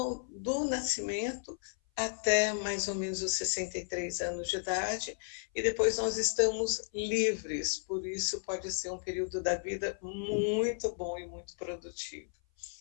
do nascimento até mais ou menos os 63 anos de idade, e depois nós estamos livres, por isso pode ser um período da vida muito bom e muito produtivo.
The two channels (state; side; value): silent; right; 55 dB below the other